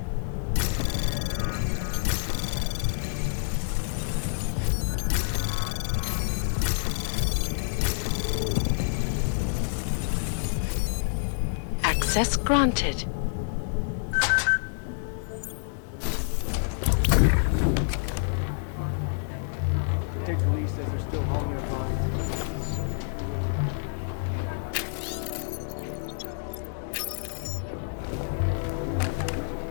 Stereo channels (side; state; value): right; silent; 58 dB below the other